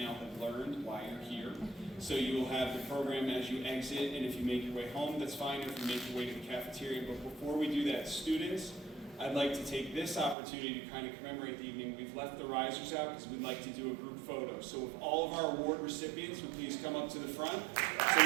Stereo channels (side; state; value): left; drops out; at 10.4 s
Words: have learned why you're here. So you will have the program as you exit, and if you make your way home, that's fine, if you make your way to the cafeteria. But before we do that, students, I'd like to take this opportunity to kind of commemorate the evening. We've left the risers out because we'd like to do a group photo. So if all of our award recipients would please come up to the front so